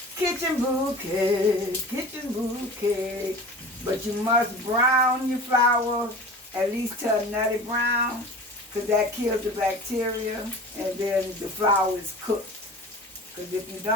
kitchen bouquet, but you must brown your flour at least to a nutty brown, because that kills the bacteria, and then the flour is cooked. Because if you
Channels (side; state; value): both; normal; correlation 0.37